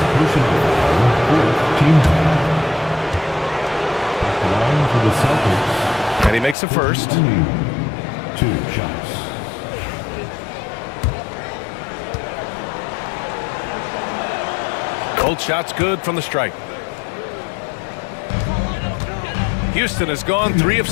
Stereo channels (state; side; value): drops out; right; at 6.6 s